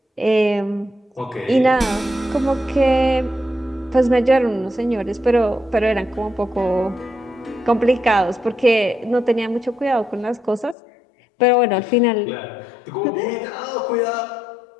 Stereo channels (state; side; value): drops out; right; at 10.8 s